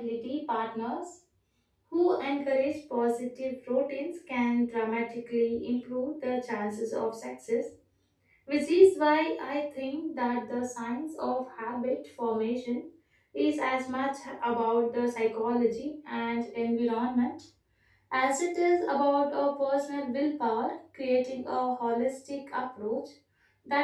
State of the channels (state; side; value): identical; both; correlation 1.00